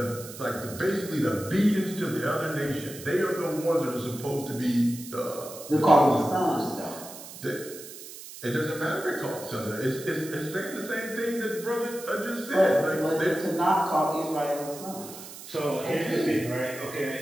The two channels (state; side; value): noise; right; hiss, 14 dB below the sound